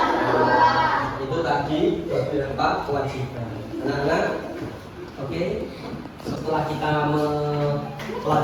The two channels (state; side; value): identical; both; correlation 1.00